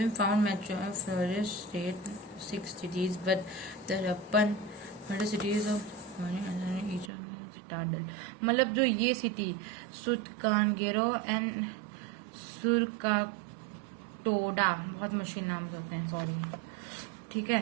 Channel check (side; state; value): left; drops out; at 7.1 s